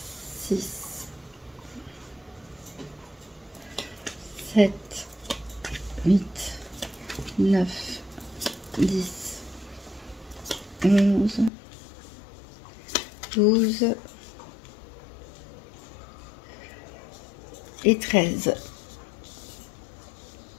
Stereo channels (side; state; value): right; drops out; at 11.5 s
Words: 6, 7, 8, 9, 10, 11, 12 et 13.